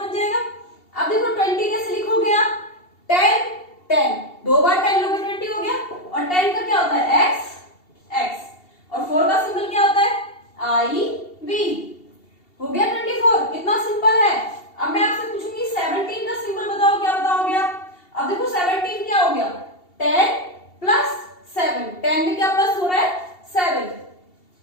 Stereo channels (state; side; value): late; right; 2.7 ms